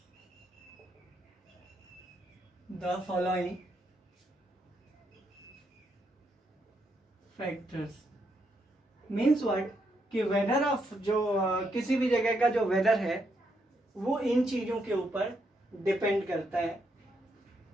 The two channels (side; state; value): both; normal; correlation 0.78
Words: The following factors means what कि वेदर ऑफ जो किसी भी जगह का जो वेदर है वो इन चीजों के ऊपर डिपेंड करता है.